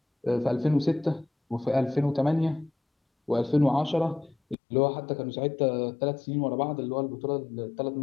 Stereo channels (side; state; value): right; drops out; at 4.5 s